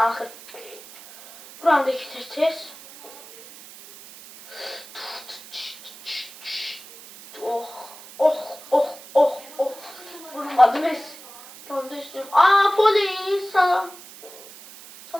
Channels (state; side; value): noise; right; hiss, 18 dB below the sound